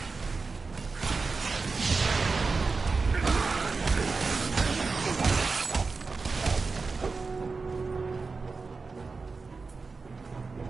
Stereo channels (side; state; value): left; quieter; 4.3 dB